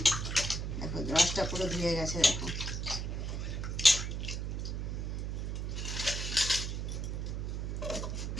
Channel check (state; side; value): noise; right; hum, 2 dB below the sound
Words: দেখো রসটা পুরো ধুয়ে গেছে। দেখো